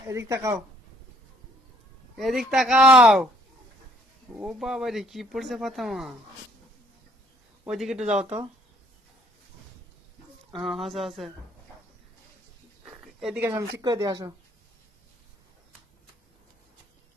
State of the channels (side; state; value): both; normal; correlation 0.63